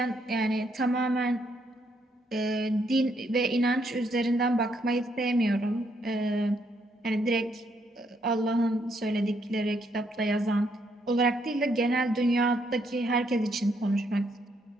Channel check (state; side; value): normal; both; correlation 0.74